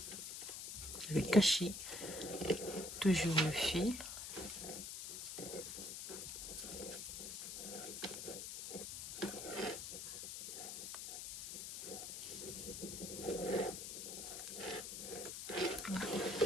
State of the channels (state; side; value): noise; left; hiss, 6 dB below the sound